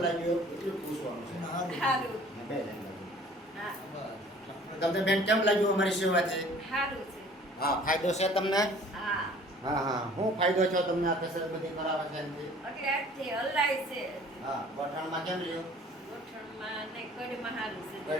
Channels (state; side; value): normal; both; correlation 0.51